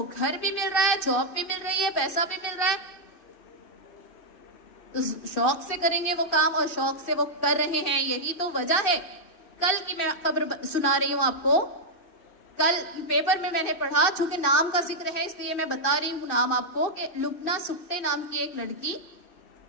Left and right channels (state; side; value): late; right; 2.6 ms